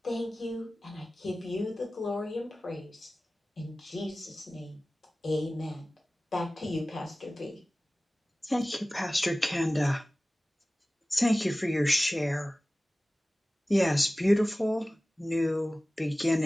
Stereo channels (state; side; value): normal; both; correlation 0.97